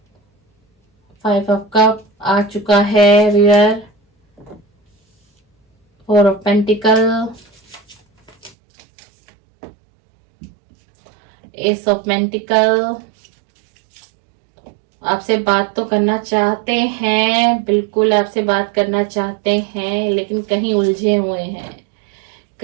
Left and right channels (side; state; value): left; drops out; at 8.6 s